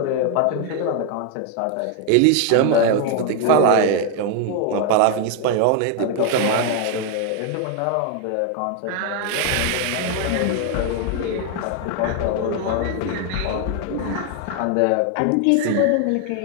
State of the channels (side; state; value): both; different; correlation 0.01